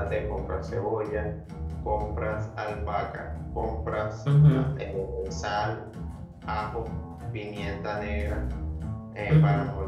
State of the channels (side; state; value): both; identical; correlation 1.00